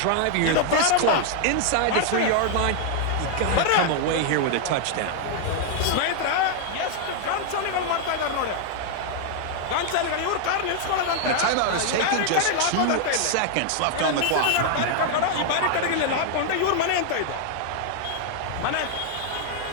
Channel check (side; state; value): both; different; correlation 0.00